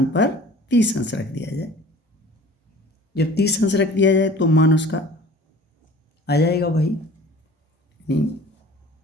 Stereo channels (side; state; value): both; normal; correlation 0.45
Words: पर 30 अंश रख दिया जाए। जब 30 अंश रख दिया जाए तो मान उसका आ जाएगा भाई